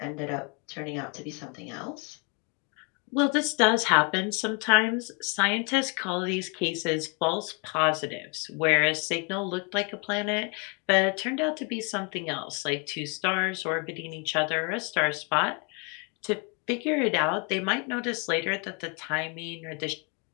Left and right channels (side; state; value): right; quieter; 33.8 dB